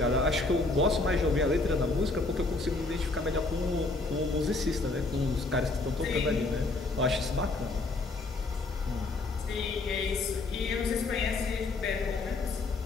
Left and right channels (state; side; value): quieter; right; 3.3 dB